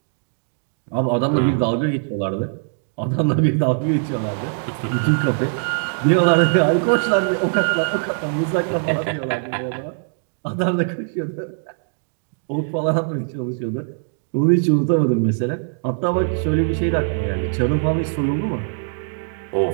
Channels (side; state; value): left; silent; digital silence